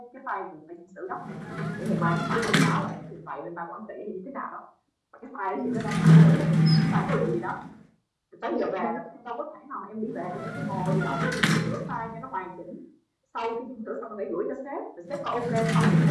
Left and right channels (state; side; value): identical; both; correlation 1.00